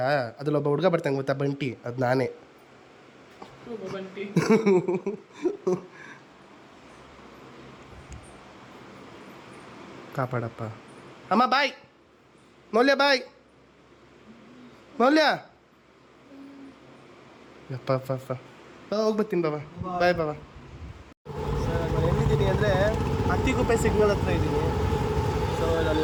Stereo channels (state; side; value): identical; both; correlation 1.00